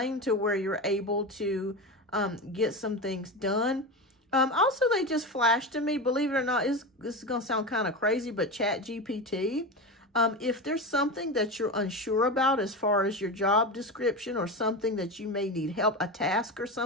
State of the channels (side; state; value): both; normal; correlation 0.22